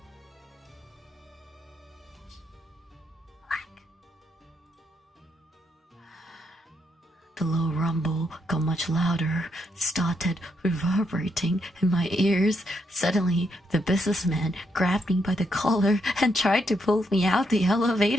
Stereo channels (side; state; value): both; normal; correlation 0.78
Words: The low rumble got much louder, started reverberating in my ears. Suddenly, the businessman grabbed me by the collar and tried to pull me out the